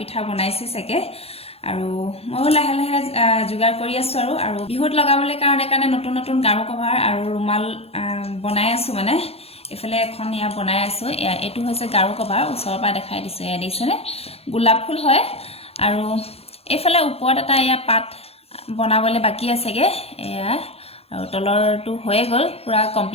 বনাইছে सके আৰু মই লাহে লাহে जुगार কৰি আছো আৰু বিহুত লগাবলৈ কাৰণে নতুন নতুন গাৰু কভাৰ আৰু ৰুমাল বনাই আছো মানে এফালে এখন ইয়া বনাই আছো এটো হৈছে গাৰু কভাৰ ওচৰৰ পৰা দেখাই দিছো এয়া দেখিছেনে গোলাপ ফুল হয় আৰু এফালে ওপৰত এটা ইয়া পাত বনাবলৈ বাকি আছেগে এয়া আৰু তলৰটো হৈ গল পুৰা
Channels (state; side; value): late; right; 0.29 ms